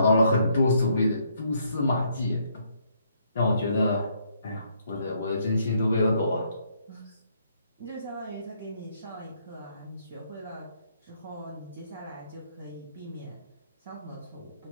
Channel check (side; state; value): both; inverted; correlation -0.71